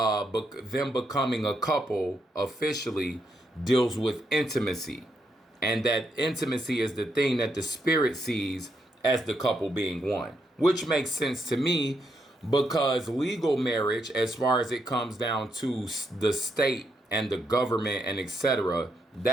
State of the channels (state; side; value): normal; both; correlation 0.79